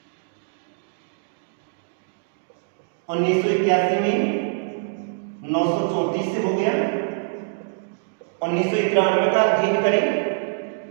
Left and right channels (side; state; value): left; silent; digital silence